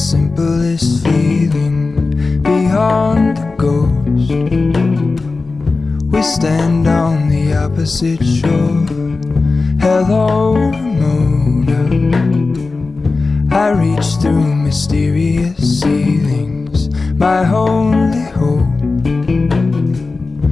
feeling beyond the ghost. We stand on the opposite shore. Hello, Ramona. I reach through mysterious ceilings, my only hope.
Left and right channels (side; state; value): right; quieter; 3.8 dB